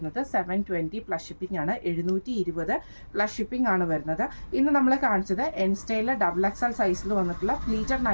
720 പ്ലസ് ഷിപ്പിംഗ് ആണ്. 720 പ്ലസ് ഷിപ്പിംഗ് ആണ് വരുന്നത്. ഇന്ന് നമ്മൾ കാണിച്ചത് എൻസ്റ്റയിലെ ഡബിൾ എക്സൽ സൈസിൽ വന്നിട്ടുള്ള പ്ലീറ്റഡ്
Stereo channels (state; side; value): inverted; both; correlation -1.00